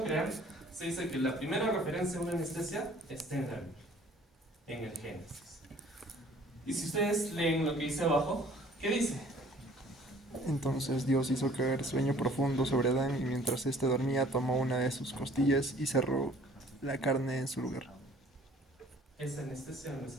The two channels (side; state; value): both; normal; correlation 0.54